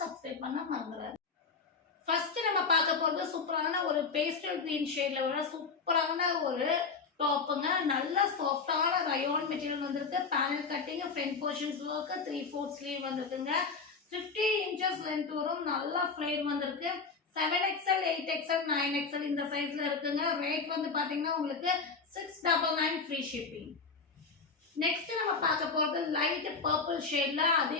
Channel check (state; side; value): quieter; right; 4.8 dB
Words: சப்ஸ்கிரைப் பண்ண மறந்துடாதீங்க. ஃபர்ஸ்ட் நம்ம பார்க்க போறது சூப்பரான ஒரு பேஸ்டல் கிரீன் ஷேட்ல வர சூப்பரான ஒரு டாப்புங்க. நல்ல சாஃப்டான ரயோன் மெட்டீரியல் வந்திருக்கு. Panel cutting, front portions work, 3/4 sleeve வந்திருக்குங்க. 50 இன்ச்சஸ் லென்த் வரும். நல்ல ஃப்ளேர் வந்திருக்கு. 7XL, 8XL, 9XL இந்த சைஸ்ல இருக்குங்க. ரேட் வந்து பாத்தீங்கன்னா உங்களுக்கு 699 ஃப்ரீ ஷிப்பிங். நெக்ஸ்ட் நம்ம பார்க்க போறது லைட் பர்பிள் ஷேட்ல